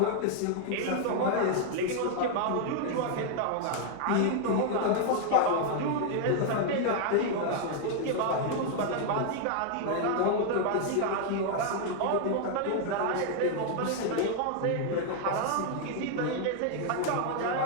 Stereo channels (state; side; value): different; both; correlation 0.00